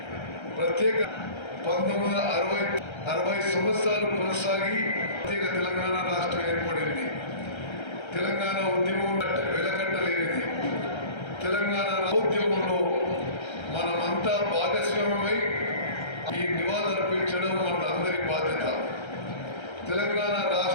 ప్రత్యేక 1960 సంవత్సరాలు కొనసాగి ప్రత్యేక తెలంగాణ రాష్ట్రం ఏర్పడింది. తెలంగాణ ఉద్యమం వెలకట్టలేనిది. తెలంగాణ ఉద్యమంలో మనమంతా భాగస్వామ్యమై ఈ నివాళులర్పించడం మన అందరి బాధ్యత. తెలంగాణ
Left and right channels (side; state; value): right; late; 1.3 ms